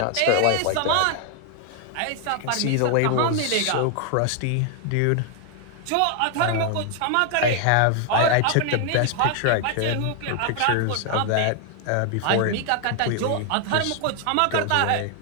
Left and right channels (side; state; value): both; different; correlation 0.00